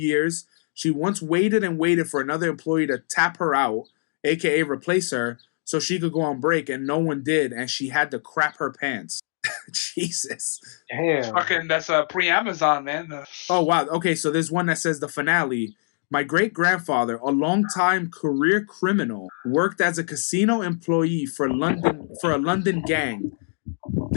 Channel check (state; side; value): silent; right; digital silence